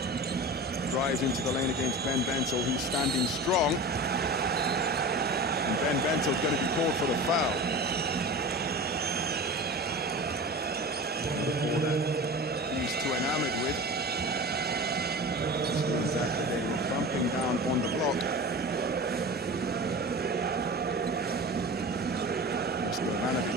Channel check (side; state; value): both; normal; correlation 0.33